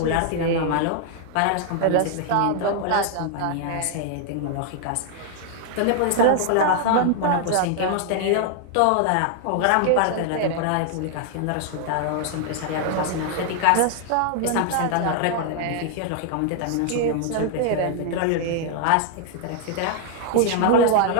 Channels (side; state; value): both; different; correlation 0.00